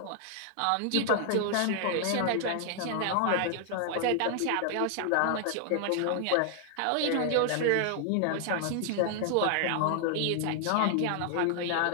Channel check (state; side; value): different; both; correlation 0.00